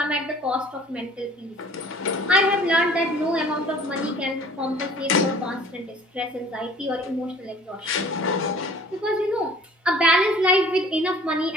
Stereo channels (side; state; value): both; normal; correlation 0.51